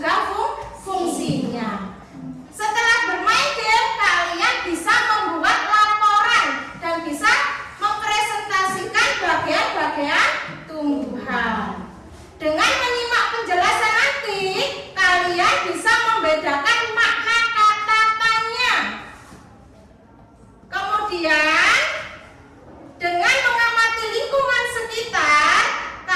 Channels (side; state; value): both; identical; correlation 1.00